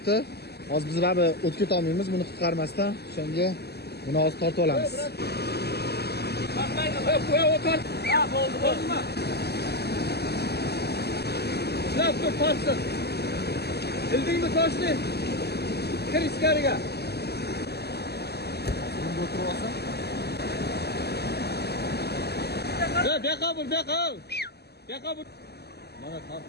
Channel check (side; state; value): right; late; 0.47 ms